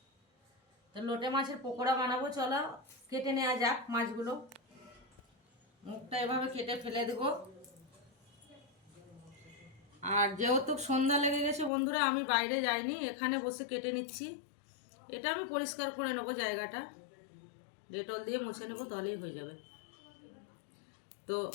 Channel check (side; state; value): right; drops out; at 11.7 s